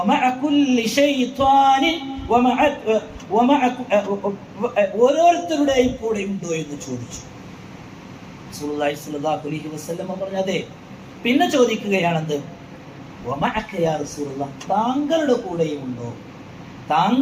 ഓരോരുത്തരുടെയും കൂടെ ഉണ്ടോ എന്ന് ചോദിച്ചു. റസൂലുള്ളാഹി സ്വല്ലല്ലാഹു അലൈഹി വസല്ലം പറഞ്ഞു, അതെ. പിന്നെ ചോദിക്കുകയാണെന്ത്? വമഅക യാ റസൂലല്ലാഹ്, താങ്കളുടെ കൂടെയും ഉണ്ടോ?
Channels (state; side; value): identical; both; correlation 1.00